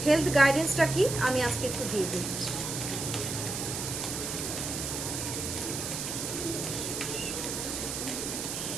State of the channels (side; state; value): right; noise; hiss, 4 dB below the sound